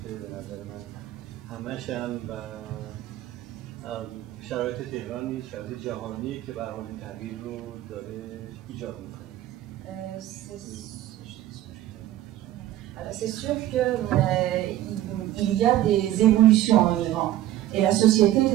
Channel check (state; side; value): quieter; left; 13.8 dB